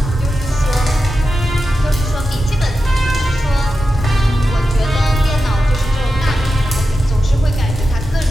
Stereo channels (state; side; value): normal; both; correlation 0.91